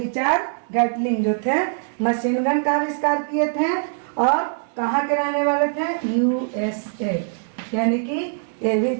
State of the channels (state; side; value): silent; left; digital silence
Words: गैटलिन जो थे मशीन गन का आविष्कार किए थे और कहाँ के रहने वाले थे? यूएसए, यानी कि ये भी